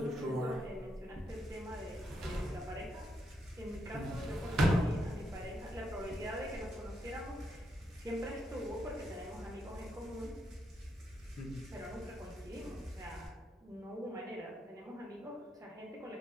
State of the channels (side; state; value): both; normal; correlation 0.80